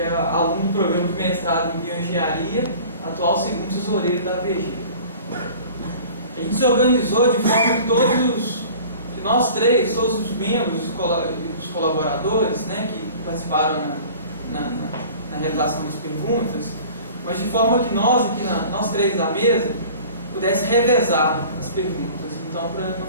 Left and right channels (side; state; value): both; inverted; correlation -0.44